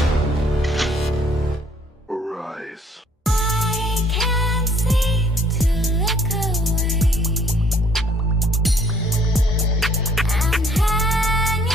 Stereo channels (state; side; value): normal; both; correlation 0.61